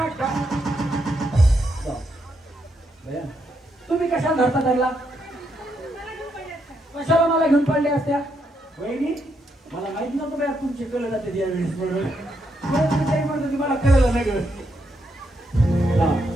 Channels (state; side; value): normal; both; correlation 0.79